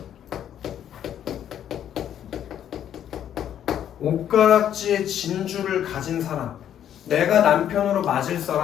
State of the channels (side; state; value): right; quieter; 10.1 dB